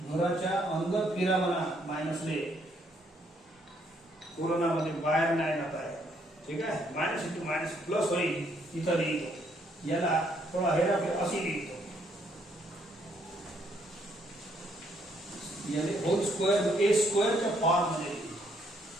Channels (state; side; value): normal; both; correlation 0.70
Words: घराच्या अंदर फिरा म्हणा मायनसले. कोरोना मध्ये बाहेर नाही जात आहे. ठीक आहे, मायनस इंटू मायनस प्लस होईल. इथं लिहितो, याला थोडा हेराफेर अशी लिहितो. यानी होल स्क्वेअर ए स्क्वेअरच्या फॉर्म मध्ये.